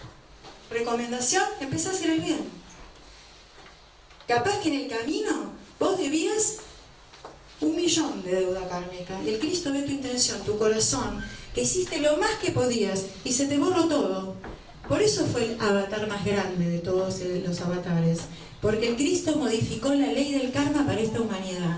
Recomendación, empezá a hacer el bien. Capaz que en el camino vos debías 1.000.000 de deuda kármica. Y el Cristo ve tu intención, tu corazón, que hiciste lo más que podías y se te borró todo. Por eso fue el avatar más grande de todos los avatares. Porque el Cristo modificó la ley del karma para esta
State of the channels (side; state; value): both; identical; correlation 1.00